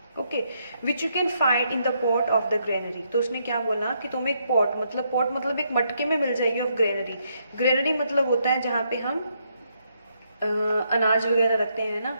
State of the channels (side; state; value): both; inverted; correlation -0.76